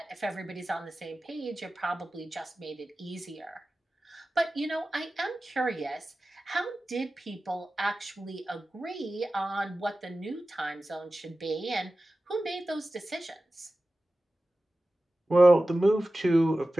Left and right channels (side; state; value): both; normal; correlation 0.95